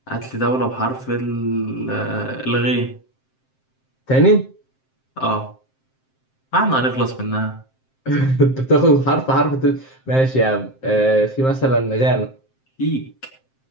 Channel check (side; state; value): right; late; 7.6 ms